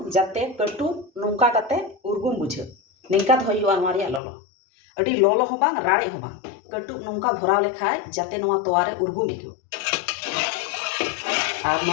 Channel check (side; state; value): right; drops out; at 4.2 s